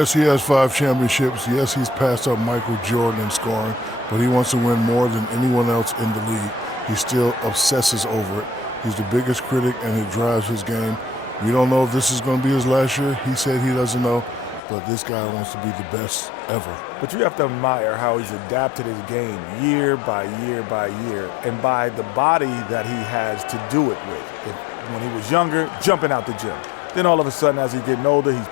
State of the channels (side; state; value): right; drops out; at 14.6 s